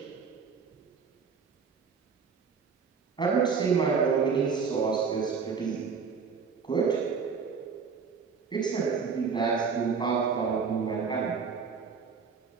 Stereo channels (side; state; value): left; quieter; 5.6 dB